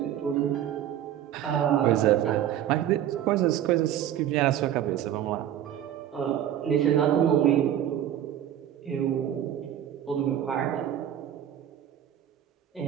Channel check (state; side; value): quieter; left; 11.0 dB